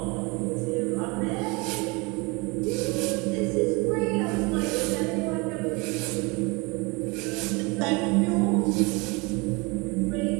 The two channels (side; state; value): left; quieter; 27.2 dB